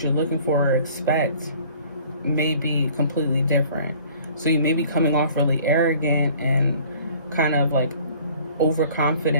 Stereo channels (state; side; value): inverted; both; correlation -0.51